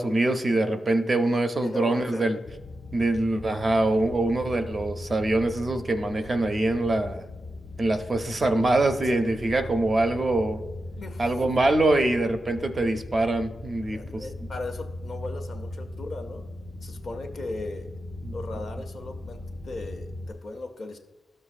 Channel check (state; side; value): normal; both; correlation 0.90